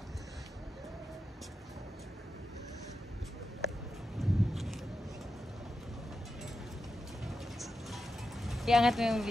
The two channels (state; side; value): normal; both; correlation 0.89